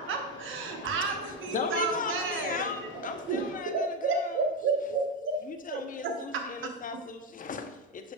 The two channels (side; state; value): both; normal; correlation 0.11